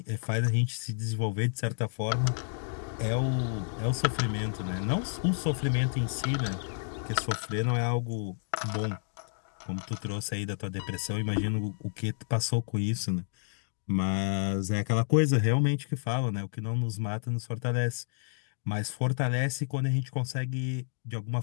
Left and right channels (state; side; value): silent; right; digital silence